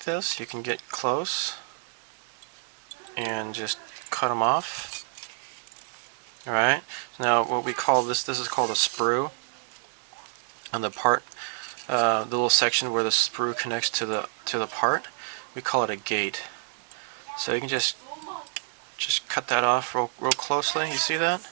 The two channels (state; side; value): silent; left; 59 dB below the other